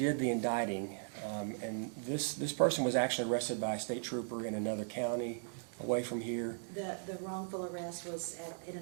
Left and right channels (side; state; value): left; silent; digital silence